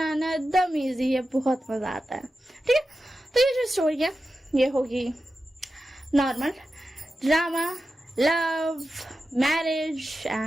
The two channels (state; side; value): normal; both; correlation 0.92